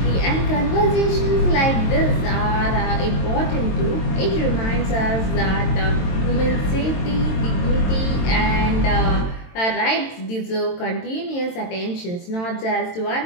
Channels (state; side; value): late; right; 22 ms